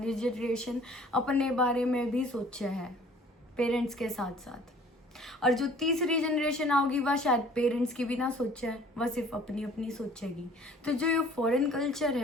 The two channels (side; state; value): both; normal; correlation 0.52